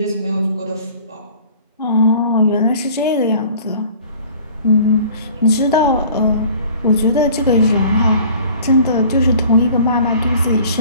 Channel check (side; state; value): both; inverted; correlation -0.49